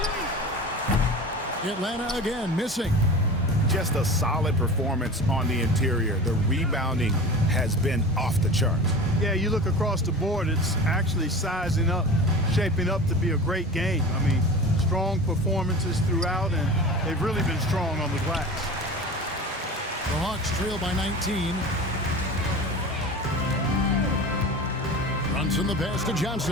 Atlanta again missing. Just a solid performance on the interior. The rebounding has been off the charts. Yeah, you look across the board, it's actually sizing up, shaping up to be a great game. I mean, strong performances throughout, and they've really been strong on the glass. The Hawks trail by 19. Runs in the pass to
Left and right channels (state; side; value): normal; both; correlation 0.34